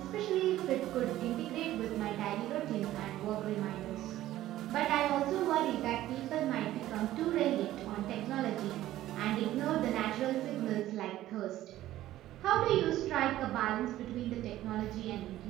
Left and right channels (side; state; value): left; quieter; 14.4 dB